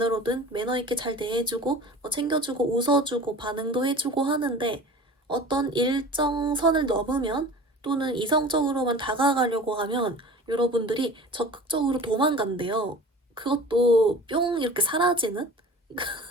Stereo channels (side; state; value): both; normal; correlation 0.40